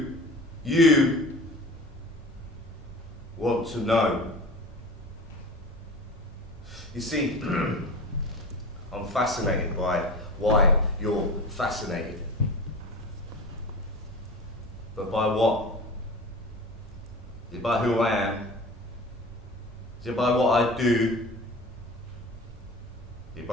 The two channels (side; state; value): both; normal; correlation 0.36